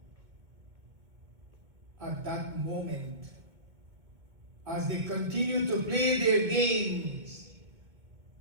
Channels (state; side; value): late; left; 2.1 ms